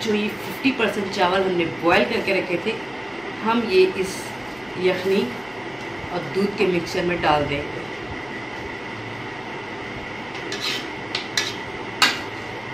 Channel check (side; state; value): left; noise; hum, 25 dB below the sound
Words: जो ये 50% चावल हमने बॉयल करके रखे थे, हम ये इस यखनी और दूध के मिक्सचर में डाल देंगे।